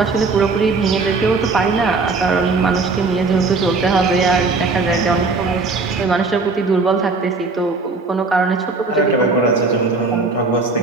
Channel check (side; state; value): left; quieter; 4.0 dB